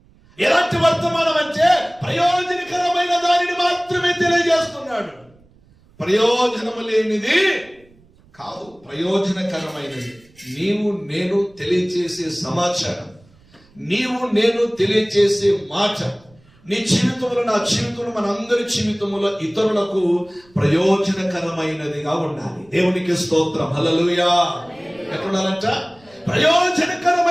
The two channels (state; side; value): noise; right; rumble, 29 dB below the sound